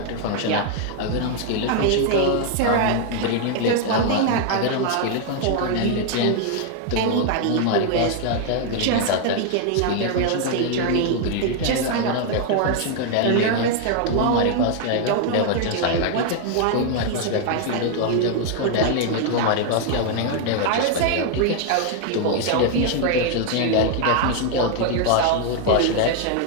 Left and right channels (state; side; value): different; both; correlation 0.00